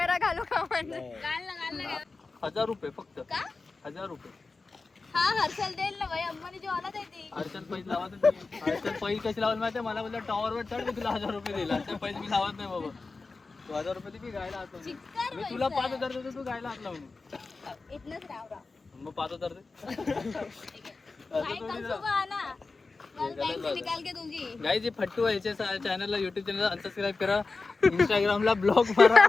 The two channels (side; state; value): right; quieter; 3.9 dB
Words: घालू का म्हणजे? घाल ना. 1000 रुपये फक्त. का? 1000 रुपये. हा हर्षल देईल ना भाई, अंबानी जेवणात आहे ती. हर्षल पैसे लावत नाही. हर्षल पैसे कशी लावत माहितीये? मला बोलला टॉवरवर चढ, मी तुला 1000 रुपये दिला. हर्षल पैसे मी लावत नाही बाबा. तू 1000 रुपये दे, मी गायला हात लावून. चिक्कार मी तुला 5000 देतो, तू गायला हात लावून. इथनच राव. मग 5000 दे. काय कल सुबह ना. कल बैंक से निकाल के दूंगी. गाइस, ये फट्टू आहे. याच्या चॅनलला, युट्यूब चॅनलला अनसबस्क्राईब करा, इंस्टाग्रामला ब्लॉग मारा